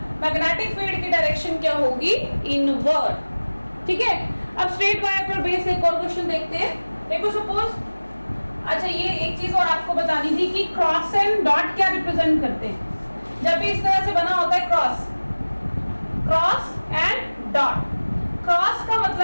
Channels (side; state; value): both; inverted; correlation -1.00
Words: मैग्नेटिक फील्ड की डायरेक्शन क्या होगी, इनवर्ड। ठीक है, अब स्ट्रेट वायर पर बेस एक और क्वेश्चन देखते हैं। देखो सपोज, अच्छा ये एक चीज और आपको बतानी थी कि क्रॉस एंड डॉट क्या रिप्रेजेंट करते हैं। जब भी इस तरह से बना होता है cross, cross and dot. Cross का